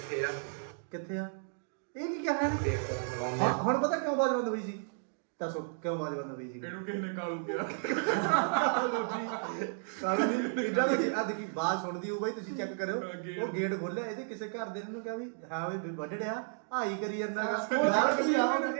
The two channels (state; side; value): silent; left; digital silence